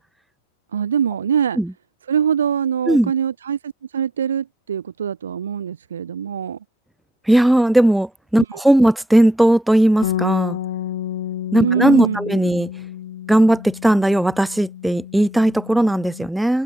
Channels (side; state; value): both; normal; correlation 0.71